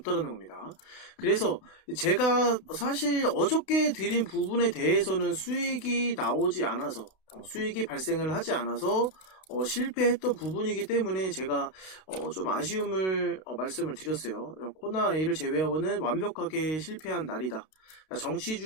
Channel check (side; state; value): right; late; 32 ms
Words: 겁니다. 그래서 제가 사실 어저께 드린 부분에 대해서는 수익이 발생을 하지 않아서 실패했던 부분이기 때문에 제가 좀 아쉬움을 말씀을 드렸어요. 코나A를 제외하고는 완벽하게 실패한 날이다.